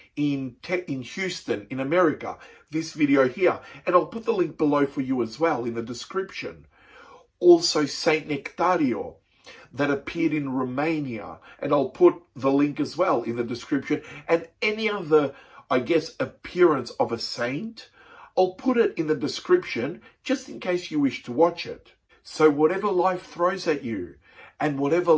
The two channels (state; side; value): identical; both; correlation 1.00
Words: in Houston, in America. This video here. And I'll put the link below for you as well in the description. Also Saint Nectario, that appeared in Romania. And I'll put the link as well in the description. And any other, I guess, appearance of a saint, I'll put it in the description just in case you wish to watch it. So whatever life throws at you, and whatever